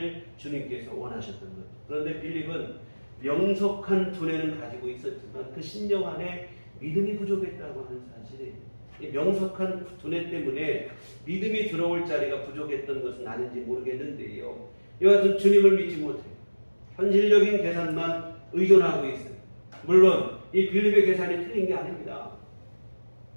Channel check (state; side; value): inverted; both; correlation -1.00